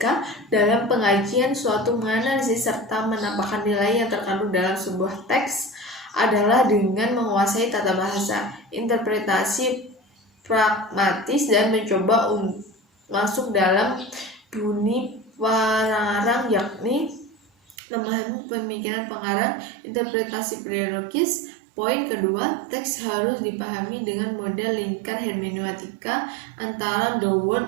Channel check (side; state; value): left; drops out; at 17.8 s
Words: dalam pengajian suatu menganalisis serta menampakkan nilai yang terkandung dalam sebuah teks adalah dengan menguasai tata bahasa, interpretasi pragmatis, dan mencoba masuk dalam bunyi pengarang, yakni memahami pemikiran pengarang, interpretasi periodologis. Poin kedua, teks harus dipahami dengan model lingkar hermeneutika antara the